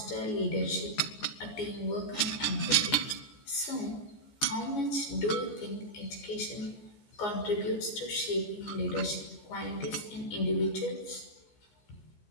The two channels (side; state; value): right; late; 14 ms